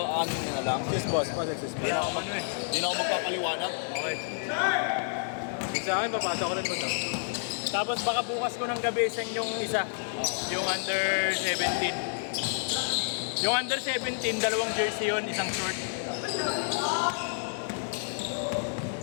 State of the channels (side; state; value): right; silent; digital silence